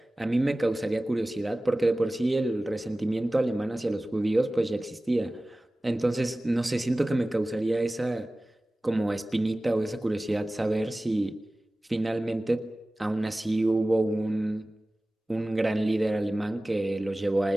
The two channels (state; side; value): normal; both; correlation 0.97